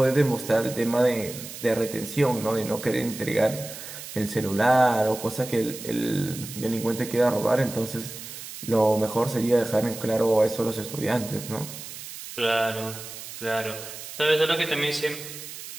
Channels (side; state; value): right; noise; hiss, 12 dB below the sound